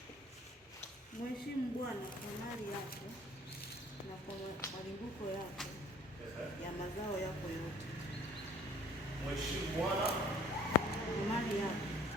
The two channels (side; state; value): both; normal; correlation 0.53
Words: Mheshimu Bwana kwa mali yako na kwa malimbuko yako ya mazao yako yote. Mheshimu Bwana